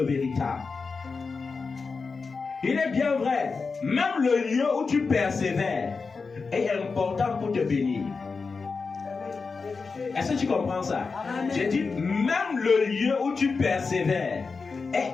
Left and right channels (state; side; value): quieter; right; 4.6 dB